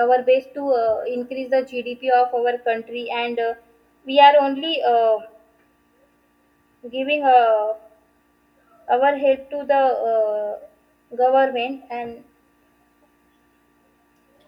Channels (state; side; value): identical; both; correlation 1.00